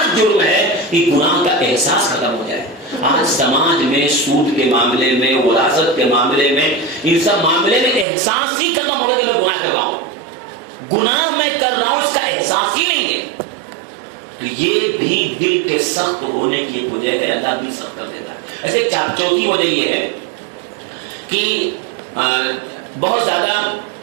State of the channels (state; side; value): drops out; left; at 8.1 s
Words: جرم ہے کہ گناہ کا احساس ختم ہو جائے. آج سماج میں سود کے معاملے میں, وراثت کے معاملے میں, ان سب معاملے میں احساس ہی ختم ہو گیا کہ میں گناہ کر رہا ہوں, گناہ میں کر رہا ہوں اس کا احساس ہی نہیں ہے. تو یہ بھی دل کے سخت ہونے کی ایک وجہ ہے, اللہ دل سخت کر دیتا ہے. ایسے چوتھی وجہ یہ ہے کہ بہت زیادہ